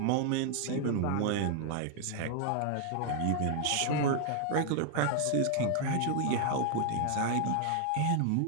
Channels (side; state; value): both; different; correlation 0.00